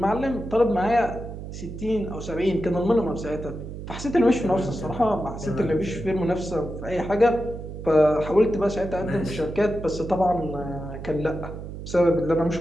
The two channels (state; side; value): noise; right; hum, 10 dB below the sound